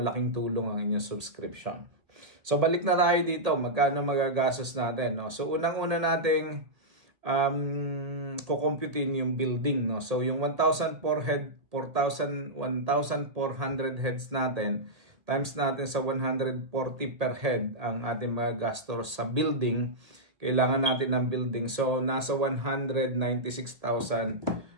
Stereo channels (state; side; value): late; left; 1.8 ms